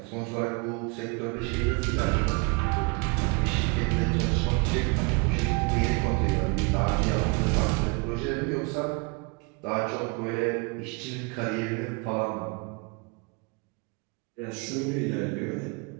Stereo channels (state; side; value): quieter; left; 31.1 dB